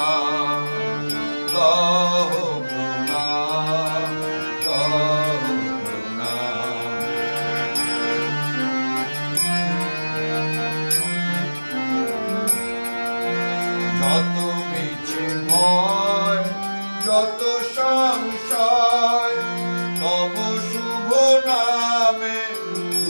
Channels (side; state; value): both; inverted; correlation -1.00